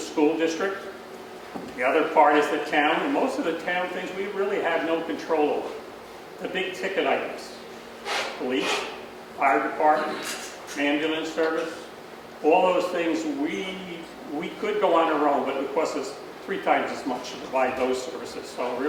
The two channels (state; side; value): identical; both; correlation 1.00